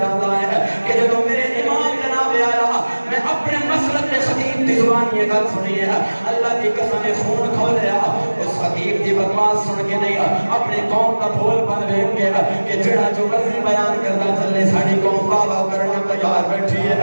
ہے کہ جب میرے امام جناب پیارا میں اپنے مسلک میں خطیب کی زبان یہ گل سنی ہے اللہ کی قسم خون کھولیا اس خطیب کی بکواس سن کے نہیں اپنے قوم کا بھول بن دیکھ کے کہ جڑا جو مرضی بیان کرتا چلے ساری قوم بابا کرنا تیار بیٹھی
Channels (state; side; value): inverted; both; correlation -1.00